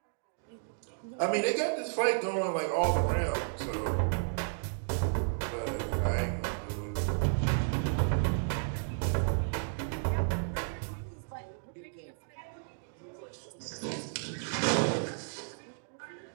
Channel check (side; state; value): left; silent; digital silence